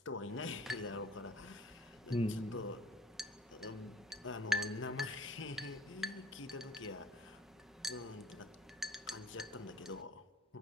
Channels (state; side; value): normal; both; correlation 0.53